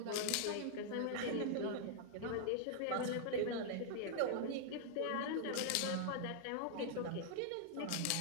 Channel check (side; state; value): both; different; correlation -0.01